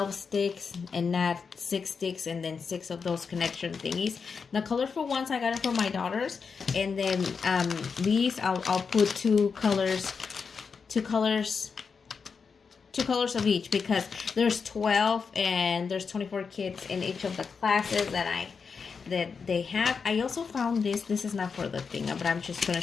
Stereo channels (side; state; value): right; quieter; 5.5 dB